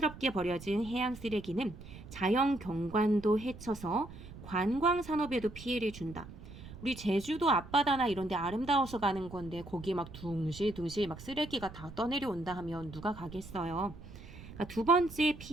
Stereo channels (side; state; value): right; noise; rumble, 15 dB below the sound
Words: 버려진 해양 쓰레기는 자연 경관도 해쳐서 관광 산업에도 피해를 준다. 우리 제주도 앞바다나 이런 데 아름다워서 가는 건데 거기에 막 둥실둥실 막 쓰레기가 다 떠내려온다 하면 누가 가겠어요. 그러니까 두 번째